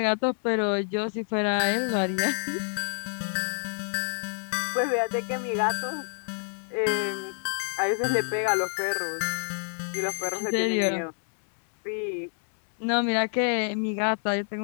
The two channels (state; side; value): silent; right; 59 dB below the other